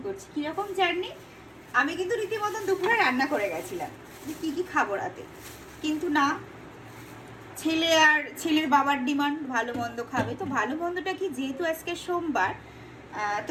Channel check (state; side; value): identical; both; correlation 1.00